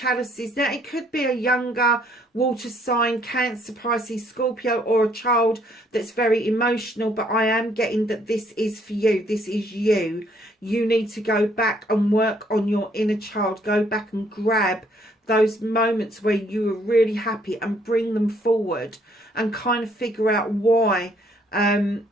Now, it could be a younger water sign, Cancer, Pisces, Scorpio, or a child that's very emotional, but I am getting that this is for you. This is you. You need to go back and work on your inner child. Go back and grab those moments where you were really happy and bring them forward and kind of figure out why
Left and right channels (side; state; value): both; normal; correlation 0.66